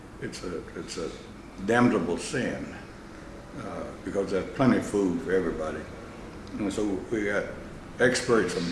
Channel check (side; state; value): both; identical; correlation 1.00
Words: It's a damnable sin because there's plenty of food for everybody. And so we got experts from